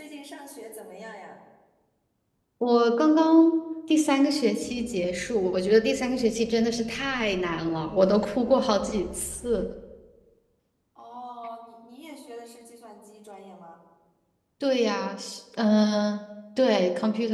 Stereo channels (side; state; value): both; identical; correlation 1.00